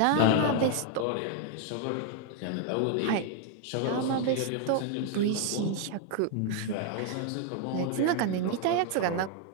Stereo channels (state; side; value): different; both; correlation 0.00